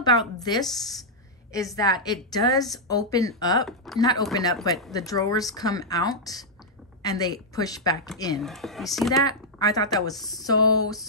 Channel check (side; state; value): both; normal; correlation -0.06